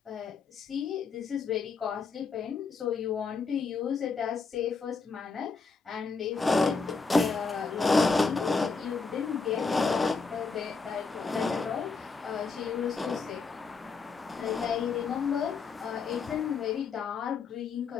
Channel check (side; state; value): right; quieter; 4.8 dB